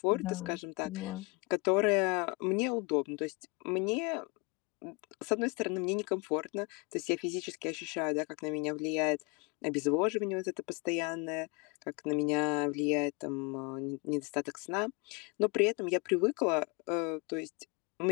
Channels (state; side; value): quieter; right; 29.6 dB